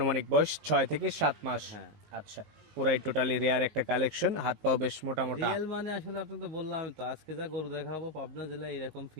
বয়স 6 থেকে 7 মাস। হ্যাঁ। আচ্ছা, পুরাই টোটালি রেয়ার একটা কালেকশন, হাত পাও বেশ মোটা মোটা। রিয়েল মানে আসলে আপনি তো বললাম তো, আজকে যা গরু দেখাবো পাবনা জেলায় এরকম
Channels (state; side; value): late; left; 19 ms